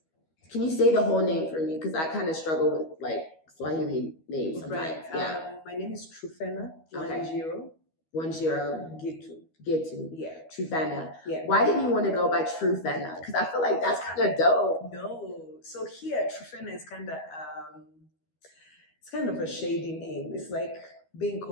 Can you say the whole name for me? Because I kind of struggle with like Swahili names sometimes. Right. Yeah. My name is True Fena. Okay. 10 Gitu. Yeah. True Fena. Yeah. Why didn't you want to go by True Fena? Because I feel like that's kind of dope. No. So here, True Fena is kind of it's kind of a shady name. It's like being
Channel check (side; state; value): right; late; 13 ms